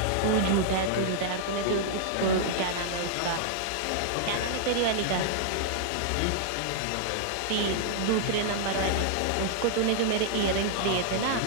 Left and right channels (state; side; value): different; both; correlation -0.01